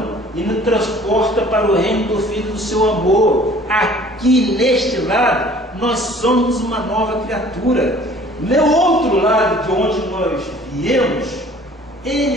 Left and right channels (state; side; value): normal; both; correlation 0.51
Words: e nos transporta para o reino do Filho do seu amor. Aqui neste lado, nós somos uma nova criatura. No outro lado de onde nós viemos,